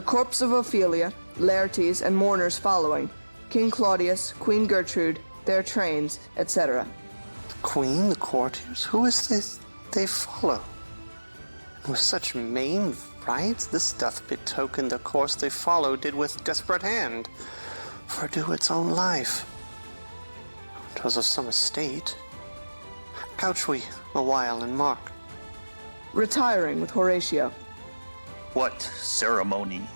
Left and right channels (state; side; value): inverted; both; correlation -1.00